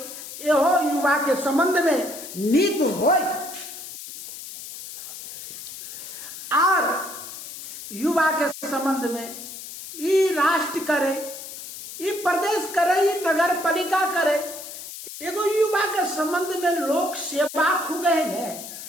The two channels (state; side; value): noise; left; hiss, 11 dB below the sound